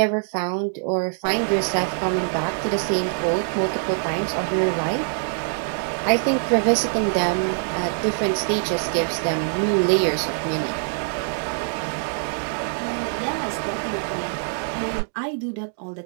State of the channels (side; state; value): left; silent; digital silence